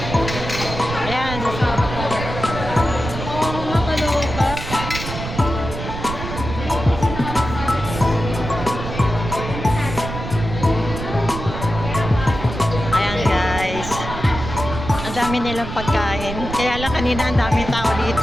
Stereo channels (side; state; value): right; noise; rumble, 7 dB below the sound